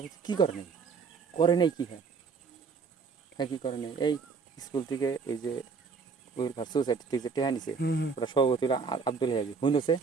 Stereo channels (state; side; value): quieter; left; 5.2 dB